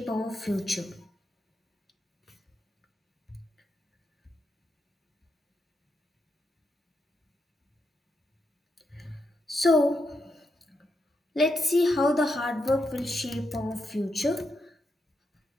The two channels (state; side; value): normal; both; correlation 0.83